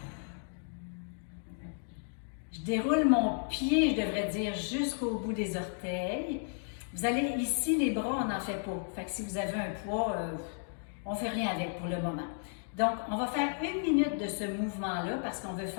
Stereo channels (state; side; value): silent; right; digital silence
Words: Je Je déroule mon pied, je devrais dire, jusqu'au bout des orteils. Vous allez ici, les bras, on n'en fait pas. Fait que si vous avez un poids, on ne fait rien avec pour le moment. Donc, on va faire 1 minute de ce mouvement-là parce qu'on veut